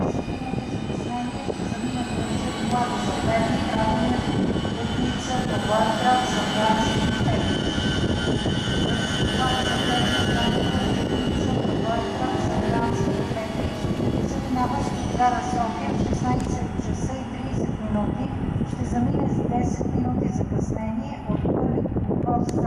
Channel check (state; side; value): identical; both; correlation 1.00